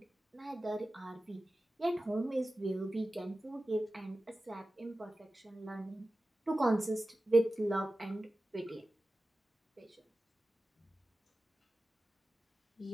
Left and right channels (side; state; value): both; normal; correlation 0.95